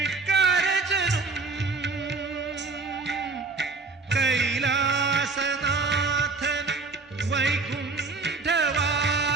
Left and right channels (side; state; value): left; quieter; 4.0 dB